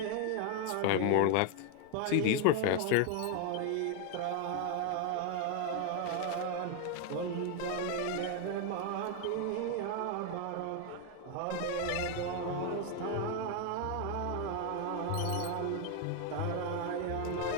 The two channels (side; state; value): both; different; correlation 0.01